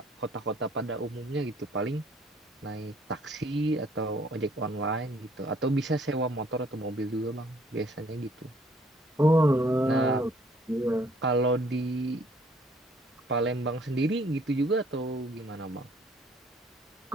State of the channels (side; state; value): both; normal; correlation 0.61